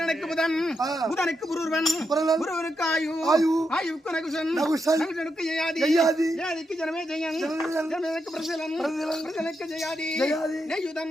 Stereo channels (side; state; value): both; normal; correlation 0.84